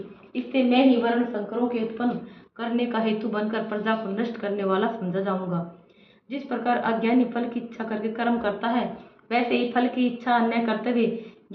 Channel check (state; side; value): identical; both; correlation 1.00